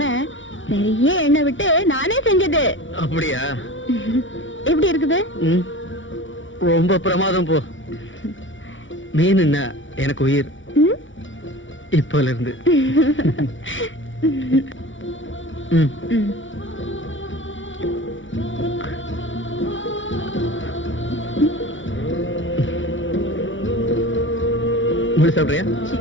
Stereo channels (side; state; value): right; late; 0.56 ms